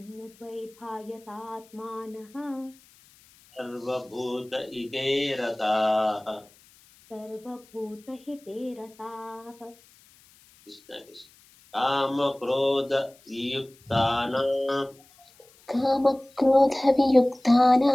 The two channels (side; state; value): left; noise; hiss, 28 dB below the sound